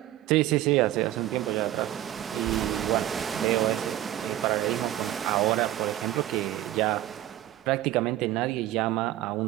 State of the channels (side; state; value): left; quieter; 13.8 dB